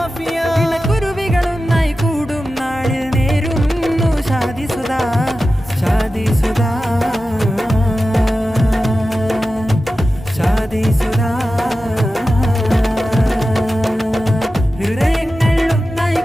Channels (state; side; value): normal; both; correlation 0.93